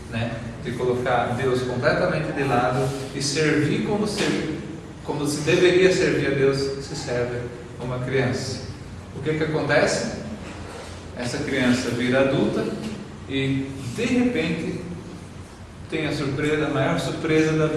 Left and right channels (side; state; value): both; identical; correlation 1.00